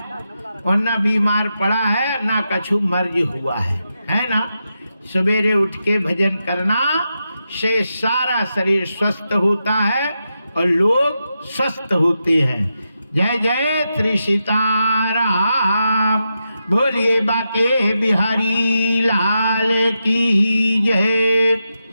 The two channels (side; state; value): both; inverted; correlation -0.87